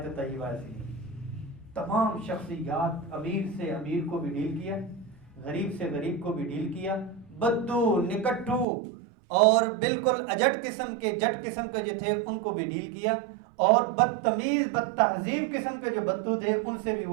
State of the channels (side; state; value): left; drops out; at 8.7 s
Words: طیبہ ایسی ہے, تمام شخصیات, امیر سے امیر کو بھی ڈیل کیا, غریب سے غریب کو بھی ڈیل کیا, بدو نکٹو اور بالکل اجٹ قسم کے جٹ قسم کے جو تھے ان کو بھی ڈیل کیا, اور بدتمیز بد تہذیب قسم کے جو بدو تھے ان سے بھی